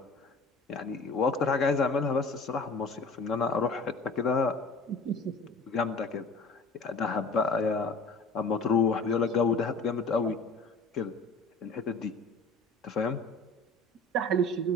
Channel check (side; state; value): right; quieter; 3.3 dB